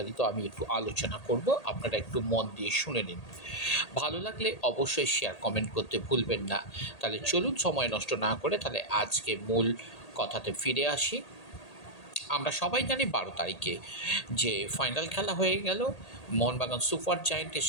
আমি একটু আলোচনা করব। আপনারা একটু মন দিয়ে শুনে নিন। ভালো লাগলে অবশ্যই শেয়ার কমেন্ট করতে ভুলবেন না। তাহলে চলুন সময় নষ্ট না করে তাহলে আজকে মূল কথাতে ফিরে আসি। আমরা সবাই জানি 12 তারিখে যে ফাইনাল খেলা হয়ে গেল মোহনবাগান সুপার জায়েন্টের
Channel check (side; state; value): right; late; 1.8 ms